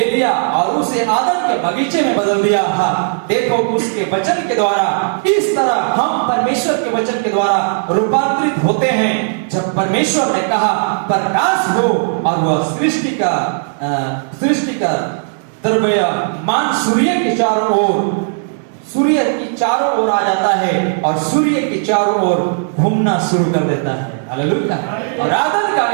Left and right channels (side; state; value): left; silent; digital silence